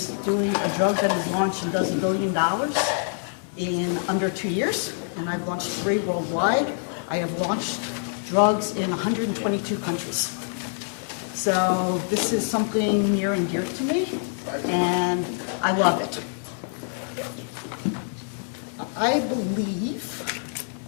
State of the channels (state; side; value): silent; right; digital silence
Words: doing a drug that is launched and does $1 billion in under 2 years. And I've launched 3 worldwide. I have launched drugs in 122 countries. So this is something near and dear to me, and I love it. I believe